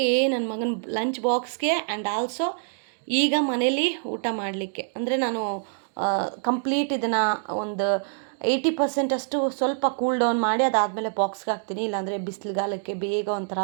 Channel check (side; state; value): left; silent; digital silence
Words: ನನ್ನ ಮಗನ ಲಂಚ್ ಬಾಕ್ಸ್ಗೆ ಆ್ಯಂಡ್ ಆಲ್ಸೋ ಈಗ ಮನೇಲಿ ಊಟ ಮಾಡಲಿಕ್ಕೆ, ಅಂದರೆ ನಾನು ಕಂಪ್ಲೀಟ್ ಇದನ್ನು ಒಂದು 80% ಅಷ್ಟು ಸ್ವಲ್ಪ ಕೂಲ್ ಡೌನ್ ಮಾಡಿ ಅದಾದಮೇಲೆ ಬಾಕ್ಸ್ಗೆ ಹಾಕ್ತೀನಿ. ಇಲ್ಲಾಂದರೆ ಬಿಸಿಲುಗಾಲಕ್ಕೆ ಬೇಗ ಒಂಥರ